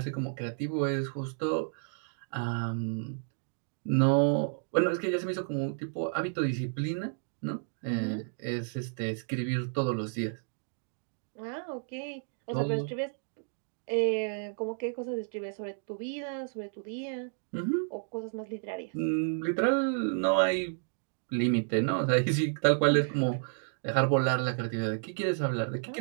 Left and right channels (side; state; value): left; silent; digital silence